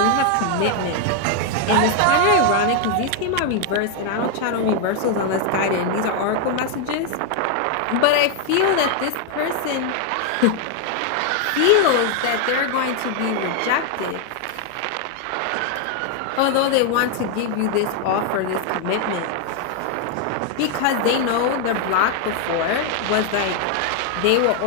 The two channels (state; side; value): different; both; correlation 0.00